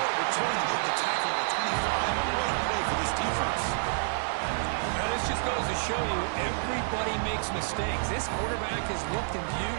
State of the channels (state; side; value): silent; left; 59 dB below the other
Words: return to get the tackle at the 25. And what a play for this defense. Now, this just goes to show you everybody makes mistakes. This quarterback is looked and viewed